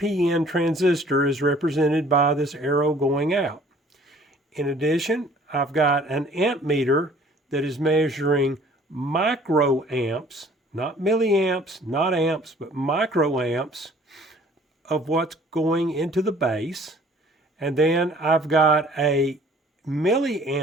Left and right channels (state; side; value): normal; both; correlation 0.54